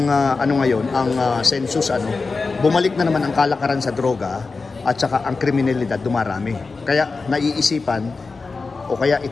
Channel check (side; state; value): right; quieter; 4.1 dB